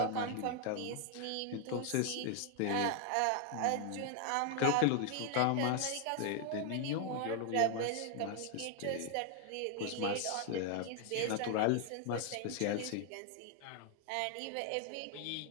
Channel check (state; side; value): different; both; correlation 0.00